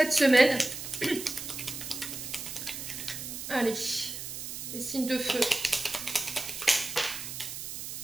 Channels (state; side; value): noise; right; hiss, 7 dB below the sound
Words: semaine. Allez, les signes de feu.